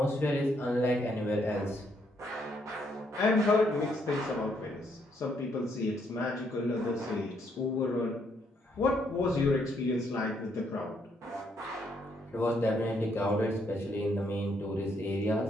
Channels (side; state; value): both; normal; correlation 0.73